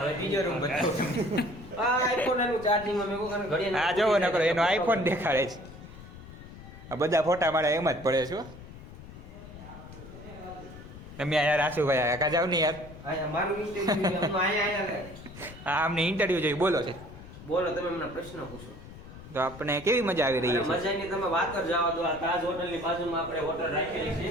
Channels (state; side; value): noise; left; rumble, 16 dB below the sound